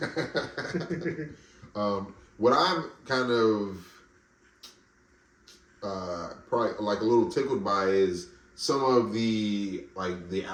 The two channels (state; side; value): identical; both; correlation 1.00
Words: What I'm kind of probably like a little tickled by is some of the